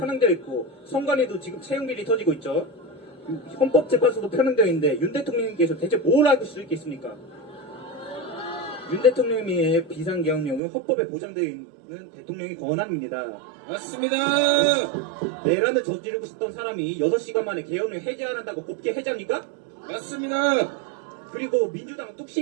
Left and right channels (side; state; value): left; drops out; at 10.6 s